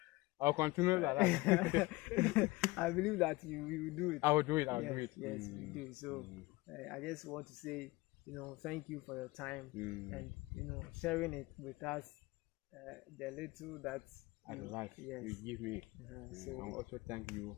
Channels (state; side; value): quieter; right; 21.3 dB